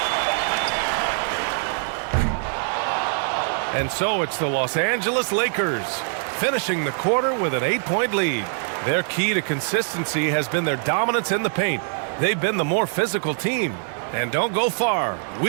And so it's the Los Angeles Lakers finishing the quarter with an 8-point lead. Their key to consistency has been their dominance in the paint. They've been the more physical team. And don't go far.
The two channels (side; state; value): left; silent; 59 dB below the other